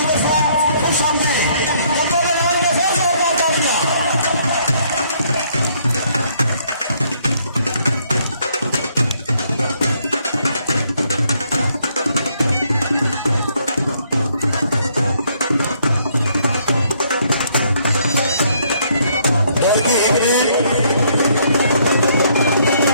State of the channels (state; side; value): inverted; both; correlation -0.68